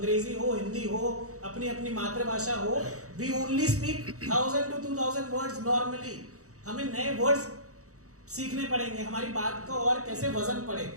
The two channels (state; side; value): late; left; 0.65 ms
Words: हो, हिंदी हो, अपनी अपनी मातृभाषा हो, we only speak 1000 to 2000 words normally. हमें नए वर्ड्स सीखने पड़ेंगे, हमारी बात को और कैसे वजन पड़े,